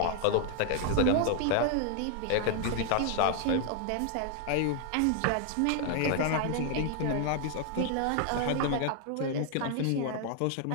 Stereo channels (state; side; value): different; both; correlation 0.00